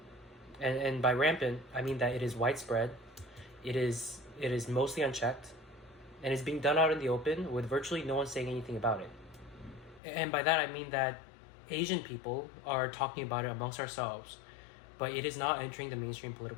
And by rampant, I mean that it is widespread, it is mostly unchecked, and is being done out in the open with virtually no one saying anything about it. And by that I mean that Asian people are talking about it amongst ourselves, but it is not entering the mainstream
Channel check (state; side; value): drops out; right; at 10.0 s